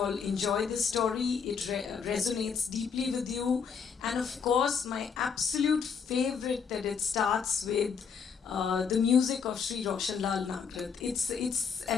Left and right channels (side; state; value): right; quieter; 6.3 dB